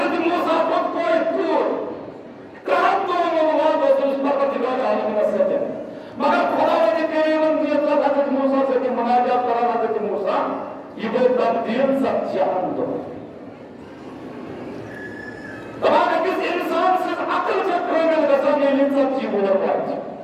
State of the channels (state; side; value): identical; both; correlation 1.00